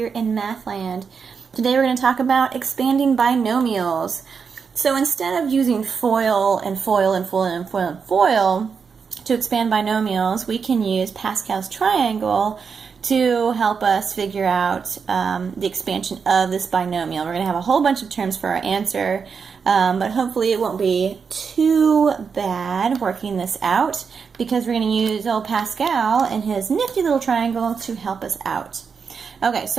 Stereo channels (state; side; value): quieter; left; 5.9 dB